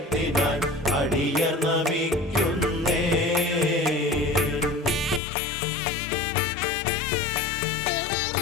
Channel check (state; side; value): drops out; right; at 5.2 s